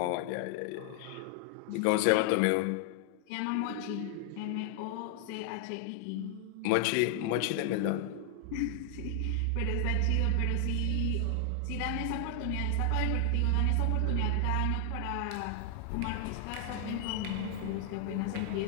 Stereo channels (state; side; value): different; both; correlation 0.00